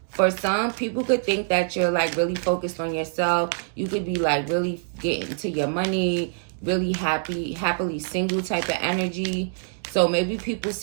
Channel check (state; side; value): silent; left; digital silence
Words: for some, people could think that you're like really focused on yourself. You could be like really getting to your money, really happily single type of energy. So maybe people